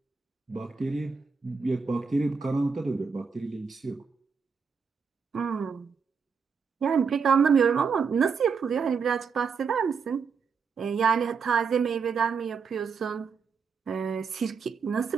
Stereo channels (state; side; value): quieter; left; 5.7 dB